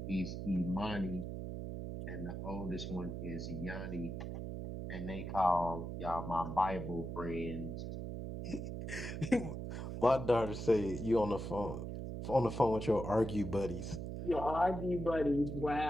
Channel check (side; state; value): right; noise; hum, 5 dB below the sound